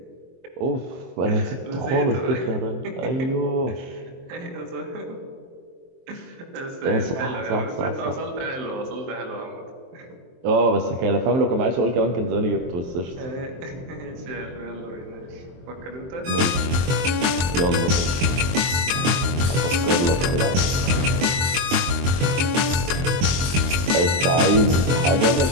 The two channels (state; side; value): late; left; 23 ms